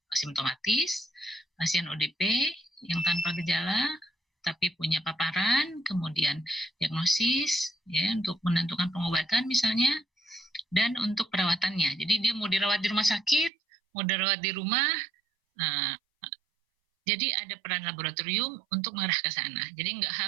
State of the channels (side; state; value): left; drops out; at 13.5 s